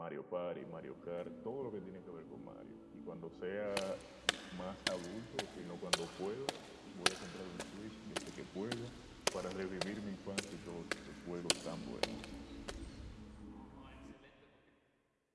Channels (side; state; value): both; identical; correlation 1.00